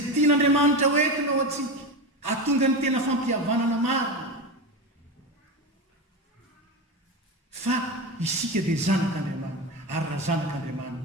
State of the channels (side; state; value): both; normal; correlation 0.20